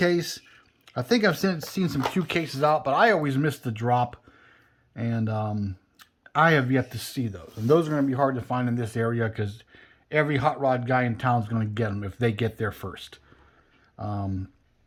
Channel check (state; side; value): identical; both; correlation 1.00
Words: I think I've seen some Q cases out, but I always miss the drop. And I have yet to see those. And those are going to be hard to find in this area because every hot rod guy in town is going to get them if they get there first.